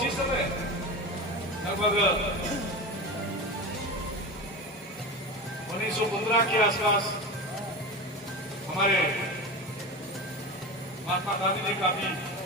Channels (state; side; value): normal; both; correlation 0.26